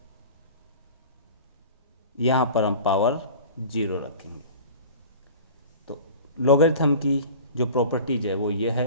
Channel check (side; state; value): both; inverted; correlation -0.39